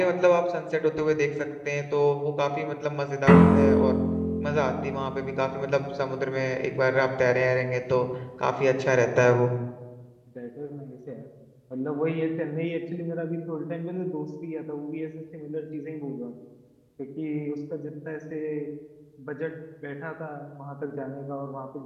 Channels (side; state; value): both; identical; correlation 1.00